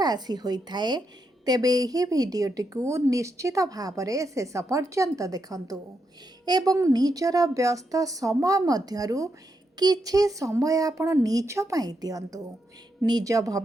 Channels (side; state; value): both; normal; correlation 0.82